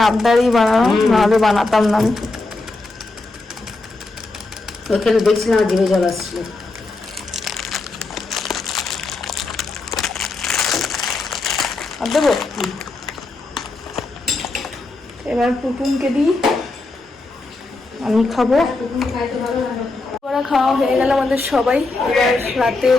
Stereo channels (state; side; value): quieter; right; 3.3 dB